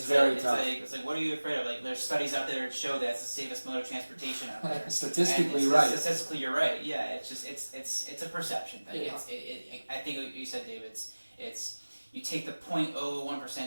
very tough. It's like, what are you afraid of? Like, there's studies out there that show that it's the safest mode of transportation out there. Statistically, right. Statistically, you're right. Yeah, it's just it's a perception thing. Yeah. I think what you said, Dave. It's you take the 0.01%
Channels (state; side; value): inverted; both; correlation -1.00